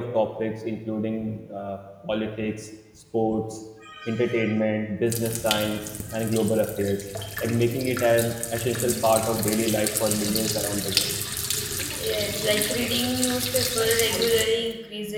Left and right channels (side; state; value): both; identical; correlation 1.00